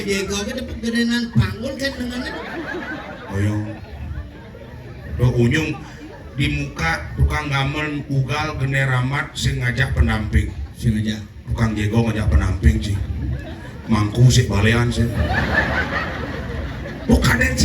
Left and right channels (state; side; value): identical; both; correlation 1.00